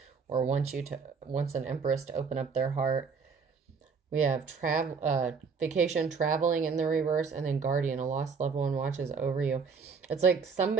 or wants an Empress to open up their heart. We have vacation, traveling in the reverse, and then guardian, a lost loved one watches over you. It's like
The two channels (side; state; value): left; quieter; 5.4 dB